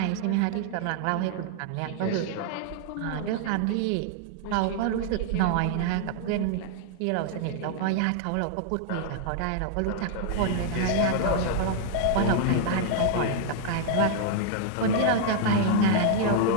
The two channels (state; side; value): different; both; correlation -0.01